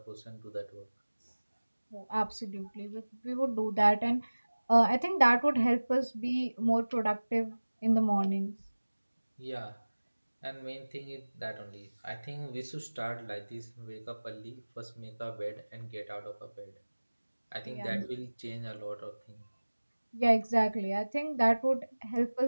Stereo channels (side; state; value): both; inverted; correlation -1.00